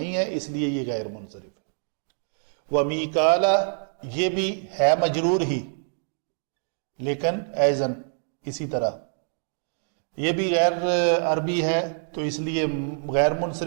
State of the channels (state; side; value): silent; left; digital silence